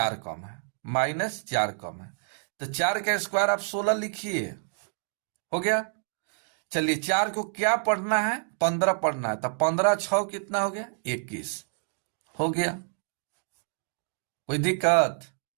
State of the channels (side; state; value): left; silent; digital silence